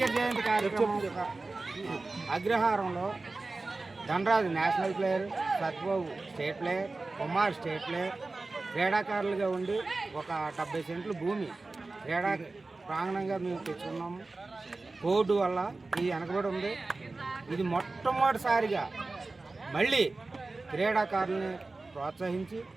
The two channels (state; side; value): quieter; left; 3.4 dB